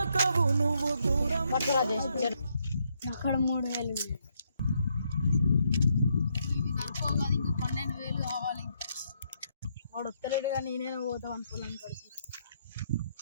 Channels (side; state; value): both; inverted; correlation -0.75